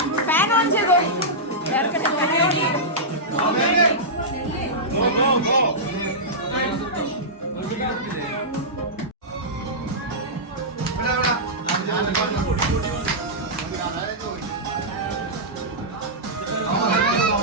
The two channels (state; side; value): normal; both; correlation -0.13